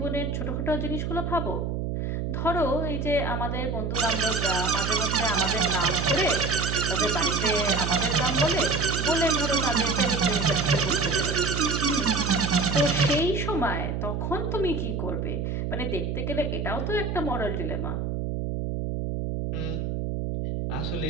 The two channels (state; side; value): noise; right; hum, 2 dB below the sound